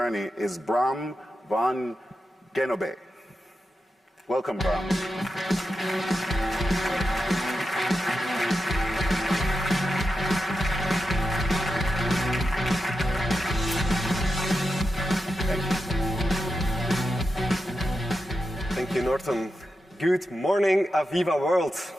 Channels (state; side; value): normal; both; correlation 0.89